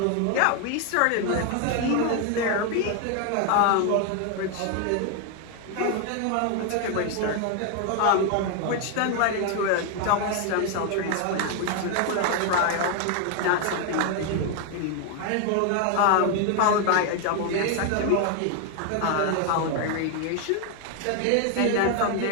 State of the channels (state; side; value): different; both; correlation 0.01